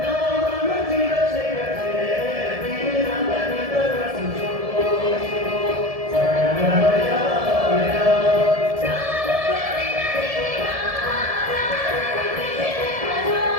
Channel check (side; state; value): left; late; 1.7 ms